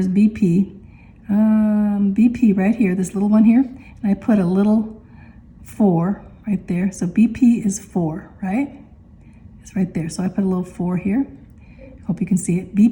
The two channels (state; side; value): identical; both; correlation 1.00